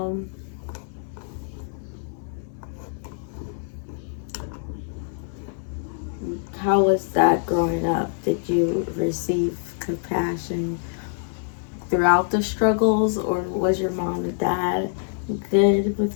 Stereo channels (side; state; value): right; silent; 62 dB below the other